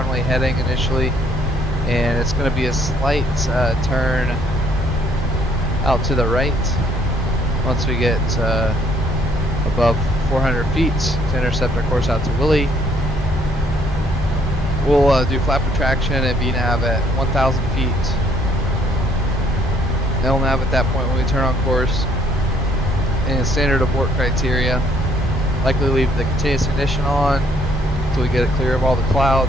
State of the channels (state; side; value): normal; both; correlation 0.65